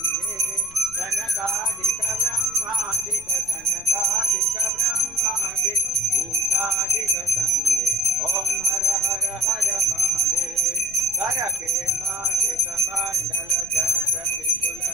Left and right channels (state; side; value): noise; left; rumble, 21 dB below the sound